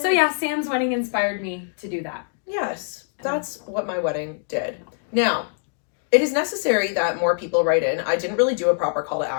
yeah, Sam's wedding inspired me to do that. Yes, that's what my wedding did. Now, it is necessary that more people write in. I didn't really do a proper call to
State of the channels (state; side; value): silent; right; digital silence